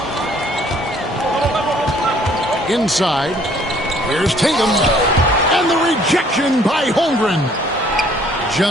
Inside, here's Tatum. And the rejection by Holmgren.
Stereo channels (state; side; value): normal; both; correlation 0.60